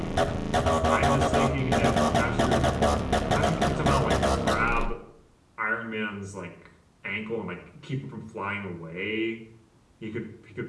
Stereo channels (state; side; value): identical; both; correlation 1.00